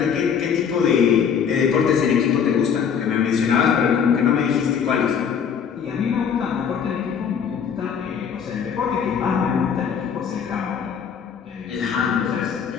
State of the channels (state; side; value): quieter; right; 7.3 dB